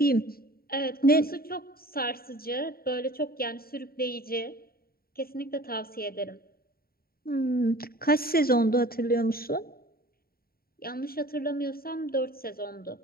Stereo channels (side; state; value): right; late; 0.43 ms